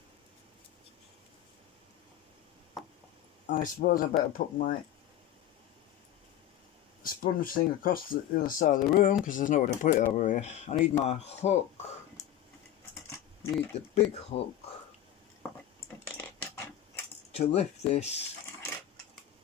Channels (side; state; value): right; quieter; 11.5 dB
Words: I suppose I better put my sponge thing across the other side of the room because there's nowhere to put it over here. I need my hook. Need the big hook to lift this.